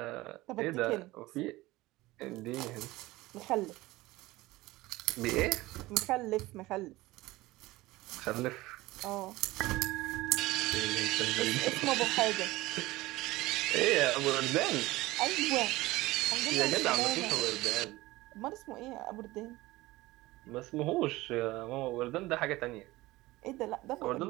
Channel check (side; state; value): left; quieter; 19.2 dB